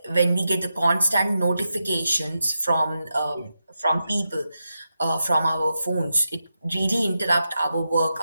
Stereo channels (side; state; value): both; inverted; correlation -0.88